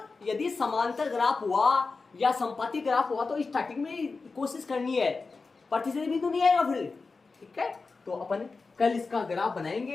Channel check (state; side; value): quieter; right; 4.2 dB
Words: यदि समांतर ग्राफ हुआ या संपाती ग्राफ हुआ तो स्टार्टिंग में कोशिश करनी है, प्रतिच्छेदी बिंदु नहीं आएगा फिर, ठीक है। तो अपन कल इसका ग्राफ